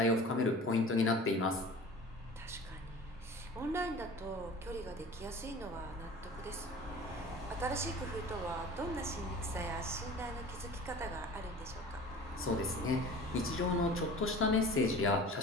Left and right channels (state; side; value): normal; both; correlation 0.40